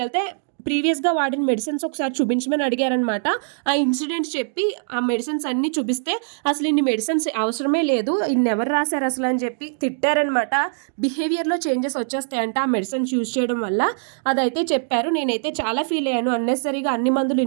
ప్రీవియస్‌గా వాడిన మెడిసిన్స్ ఒకసారి చూపించమని అడిగారనమాట. ఆ ఇన్సిడెంట్స్ చెప్పి ఆ మెడిసిన్స్ అన్నీ చూపిస్తే అసలు ఇన్ని మెడిసిన్స్ అవసరమే లేదు. ఇన్ని ఎవరు రాశారు అసలు అని చెప్పి తిట్టారనమాట. బిహేవియర్‌లో చేంజెస్ వచ్చేస్తాయంట ఆ మెడిసిన్స్ యూజ్ చేయడం వల్ల. అదైతే చెప్పారు. నేనైతే చాలా ఫీల్ అయ్యాను. అన్నెసెసరీగా అన్ని మందులు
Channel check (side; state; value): left; silent; digital silence